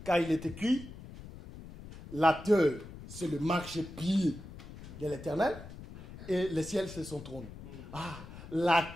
Car il est écrit, la terre, c'est le marchepied de l'Éternel, et le ciel, c'est son trône. Ah, la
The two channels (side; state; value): left; noise; rumble, 14 dB below the sound